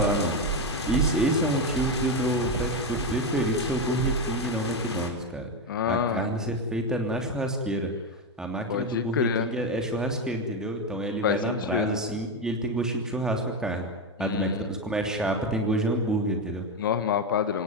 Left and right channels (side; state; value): both; normal; correlation 0.11